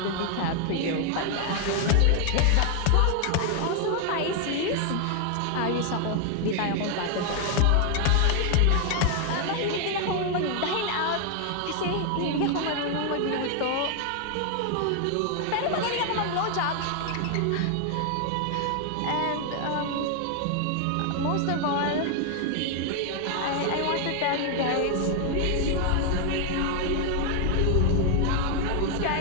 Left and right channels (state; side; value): different; both; correlation 0.00